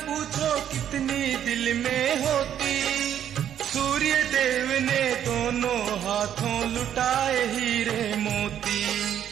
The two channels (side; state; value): left; quieter; 10.0 dB